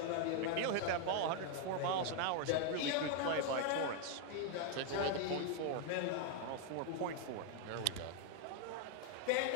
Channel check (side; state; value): both; different; correlation 0.01